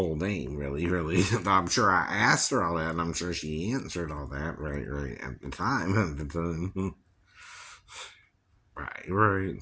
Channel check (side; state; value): both; identical; correlation 1.00